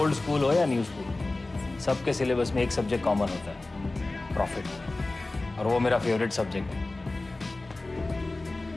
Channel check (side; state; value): right; quieter; 3.0 dB